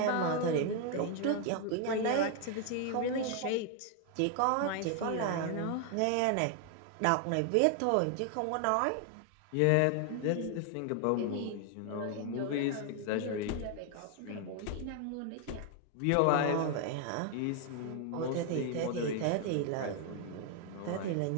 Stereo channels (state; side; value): different; both; correlation 0.00